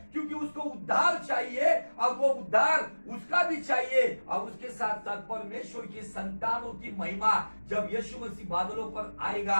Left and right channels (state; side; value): inverted; both; correlation -1.00